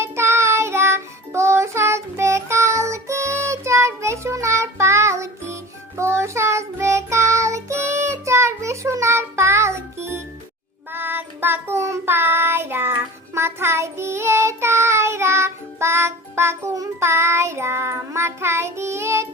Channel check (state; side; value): normal; both; correlation 0.37